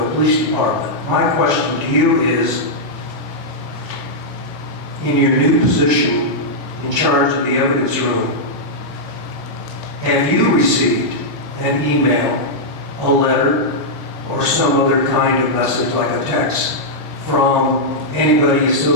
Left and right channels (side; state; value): both; normal; correlation -0.07